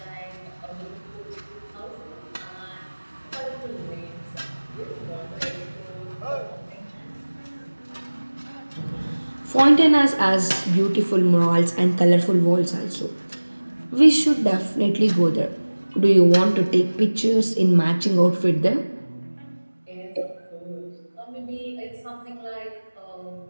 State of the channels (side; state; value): both; inverted; correlation -1.00